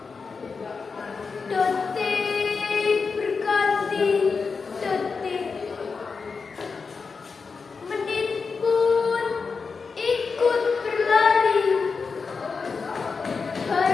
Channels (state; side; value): quieter; right; 4.9 dB